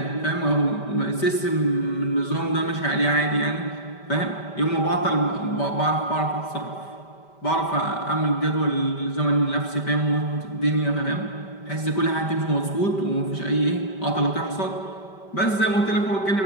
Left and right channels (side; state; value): right; late; 5.1 ms